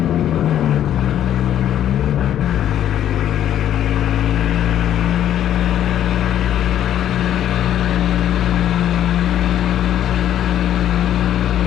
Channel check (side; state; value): right; quieter; 11.0 dB